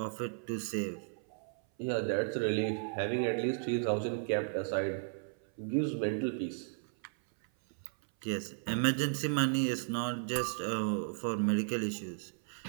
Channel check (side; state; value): left; silent; 55 dB below the other